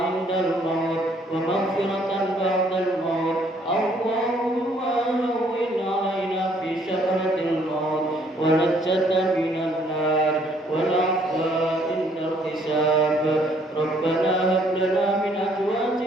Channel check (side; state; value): both; normal; correlation 0.64